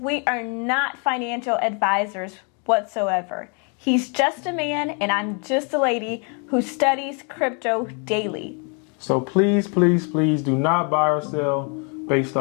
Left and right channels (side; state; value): right; quieter; 37.0 dB